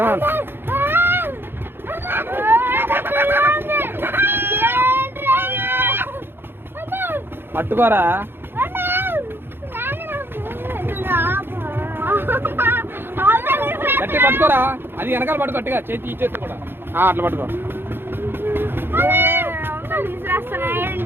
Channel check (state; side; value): late; left; 0.10 ms